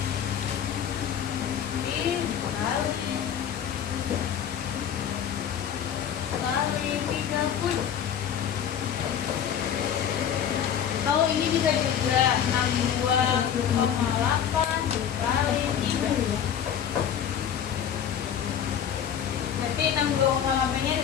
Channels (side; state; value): right; quieter; 8.9 dB